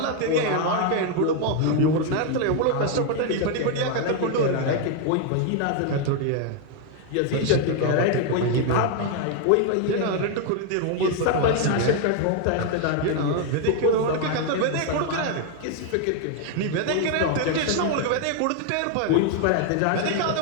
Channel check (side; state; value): both; different; correlation 0.01